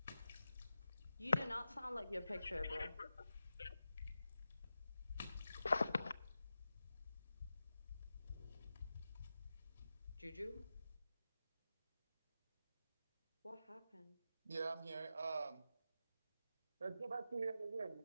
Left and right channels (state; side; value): inverted; both; correlation -0.91